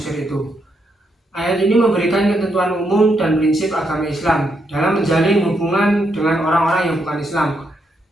itu. Ayat ini memberikan ketentuan umum dan prinsip agama Islam dalam menjalin hubungan dengan orang-orang yang bukan Islam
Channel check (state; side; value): normal; both; correlation 0.79